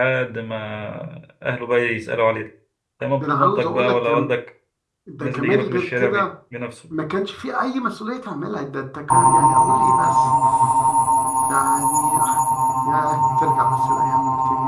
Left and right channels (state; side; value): identical; both; correlation 1.00